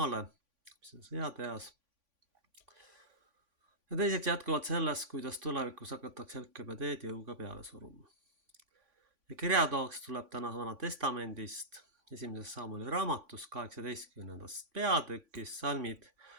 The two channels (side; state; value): left; late; 3.5 ms